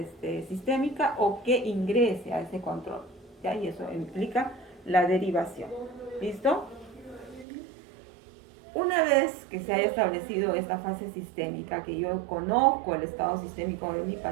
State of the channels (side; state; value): left; drops out; at 7.5 s